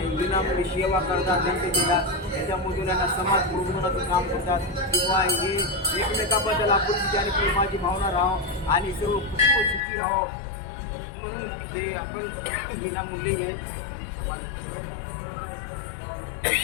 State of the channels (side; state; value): right; drops out; at 9.8 s